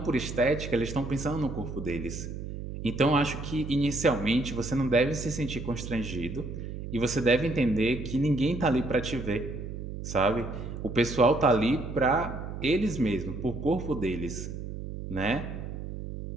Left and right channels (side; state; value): right; noise; hum, 8 dB below the sound